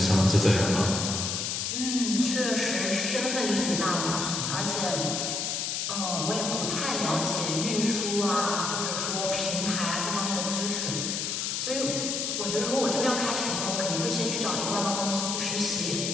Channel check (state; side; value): noise; left; hiss, 1 dB below the sound